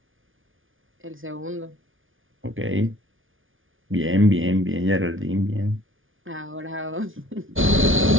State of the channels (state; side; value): late; left; 0.58 ms